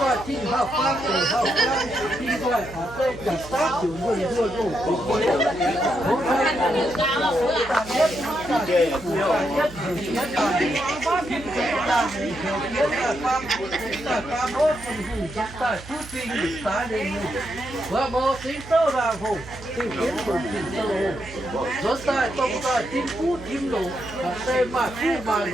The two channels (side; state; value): right; noise; hum, 16 dB below the sound